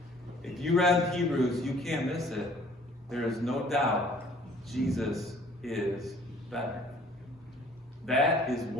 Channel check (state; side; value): normal; both; correlation 0.55